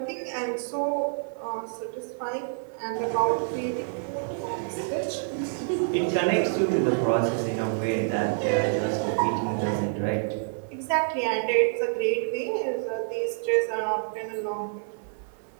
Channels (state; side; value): silent; left; 59 dB below the other